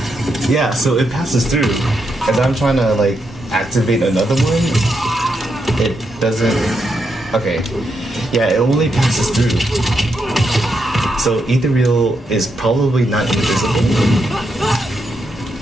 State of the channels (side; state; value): both; normal; correlation 0.82